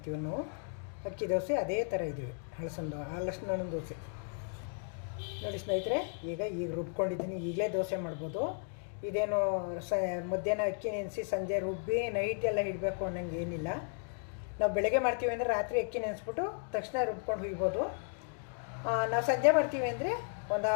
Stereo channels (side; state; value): right; silent; 55 dB below the other